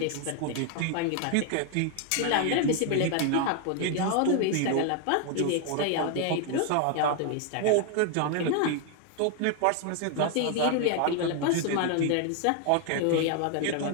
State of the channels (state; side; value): different; both; correlation 0.00